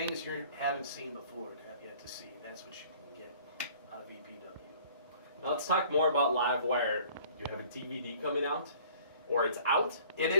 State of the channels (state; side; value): inverted; both; correlation -0.52